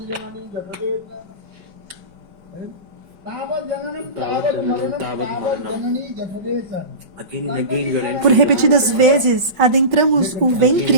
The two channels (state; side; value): late; left; 4.9 ms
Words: Por repetidas vezes, adentramos o